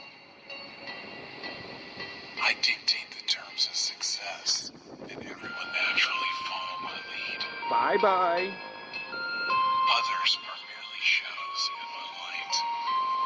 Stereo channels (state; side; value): identical; both; correlation 1.00